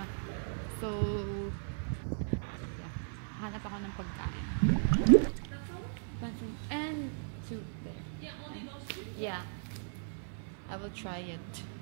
So, yeah. Hanap ako ng pagkain. And soup there. Yeah, only those two? Yeah. I will try it.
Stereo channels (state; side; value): silent; left; 54 dB below the other